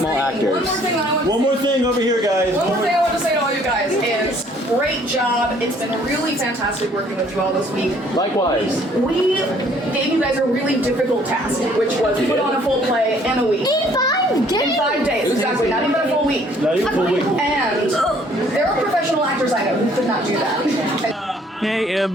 actors. One more thing over here, guys. One more thing I want to say to all you guys is great job. It's been really fantastic working with you all this week. Likewise. We gave you guys a really difficult task, which was put on a full play in a week. In 5 days? In 5 days, exactly. Not even a full week. Not even a full week. And there are professional actors I know who could not do that. Hey,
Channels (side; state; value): both; normal; correlation 0.60